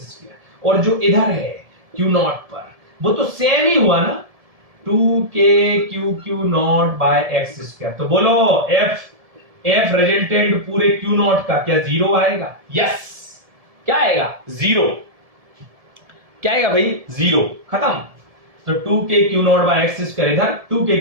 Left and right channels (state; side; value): late; left; 1.7 ms